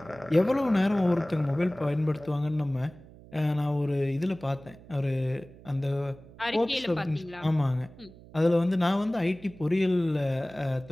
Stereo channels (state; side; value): noise; right; hum, 21 dB below the sound